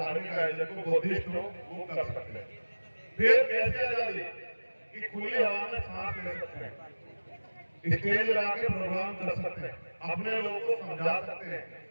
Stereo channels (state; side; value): inverted; both; correlation -1.00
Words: आयोजन को, बुद्धिस्ट हो, वो कर सकते हैं। फिर कैसे आजादी कि खुली हवा में सांस ले सकते हैं, स्टेज लगा के प्रोग्राम कर सकते हैं, अपने लोगों को समझा सकते हैं,